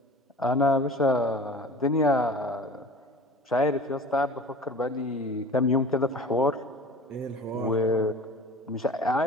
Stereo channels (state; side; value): normal; both; correlation 0.40